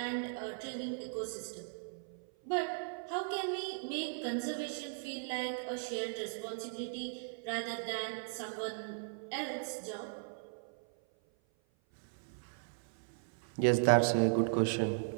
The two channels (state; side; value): silent; left; 53 dB below the other